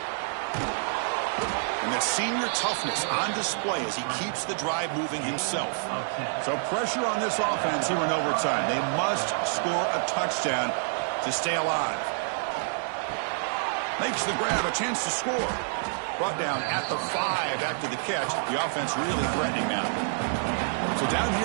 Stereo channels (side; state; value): left; silent; digital silence